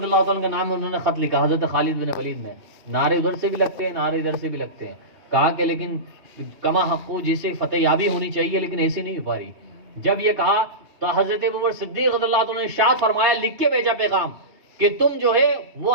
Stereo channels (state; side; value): late; left; 2.8 ms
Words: اللہ تعالیٰ کا نام انہوں نے خط لکھا حضرت خالد بن ولید نے. نعرے ادھر سے بھی لگتے ہیں، نعرے ادھر سے بھی لگتے ہیں. کہا کہ لیکن کما حقو جسے فتح یابی ہونی چاہیے لیکن ایسی نہیں ہو پا رہی. جب یہ کہا تو حضرت ابو صدیق رضی اللہ تعالیٰ نے ارشاد فرمایا، لکھ کے بھیجا پیغام کہ تم جو ہے وہ